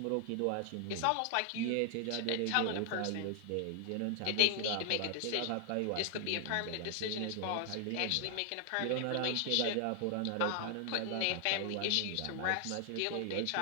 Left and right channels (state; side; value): different; both; correlation 0.00